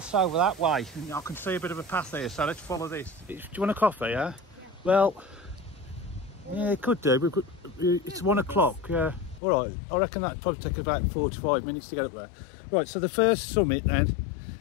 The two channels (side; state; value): right; drops out; at 9.4 s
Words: over that way, and I can see a bit of a path here, so let's follow this. Do you want a coffee, yeah? Well, yeah, it could do. It's 1 o'clock, yeah. All right, I reckon that'd probably take about 45 minutes to get up there. Right, so the first summit